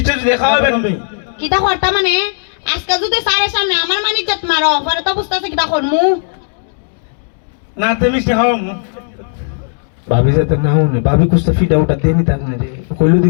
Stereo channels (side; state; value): right; silent; digital silence